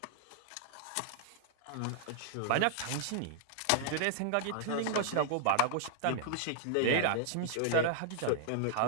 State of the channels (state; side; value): different; both; correlation 0.00